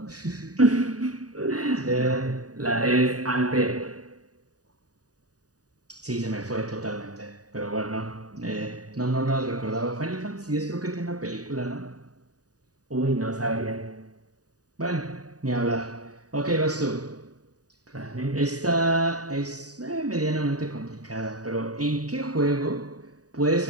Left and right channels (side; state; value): left; late; 0.68 ms